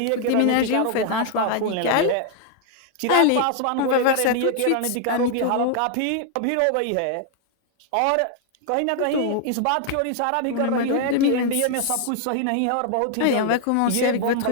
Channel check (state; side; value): different; both; correlation 0.00